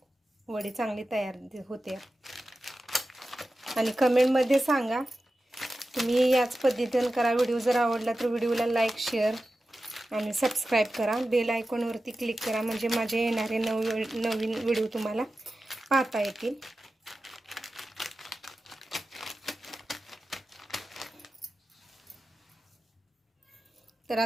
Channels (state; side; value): normal; both; correlation 0.93